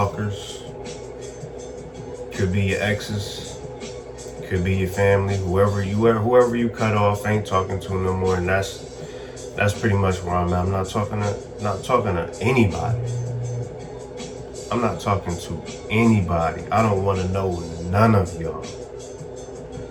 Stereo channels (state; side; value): identical; both; correlation 1.00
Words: Could be your exes, could be your family, whoever you cut off, ain't talking to no more, and that's pretty much where I'm at. I'm not talking to anybody. I'm not talking to anybody. I don't want to know none of y'all.